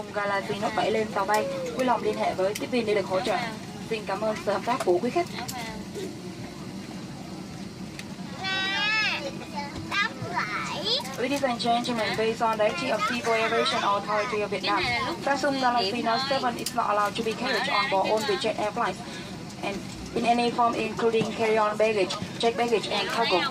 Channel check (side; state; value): both; identical; correlation 1.00